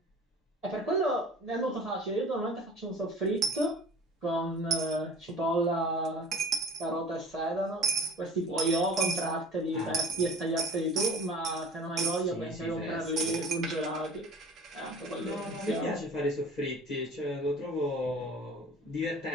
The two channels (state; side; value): normal; both; correlation 0.43